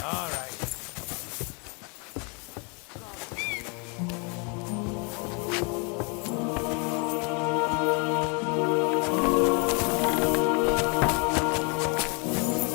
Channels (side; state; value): right; quieter; 34.1 dB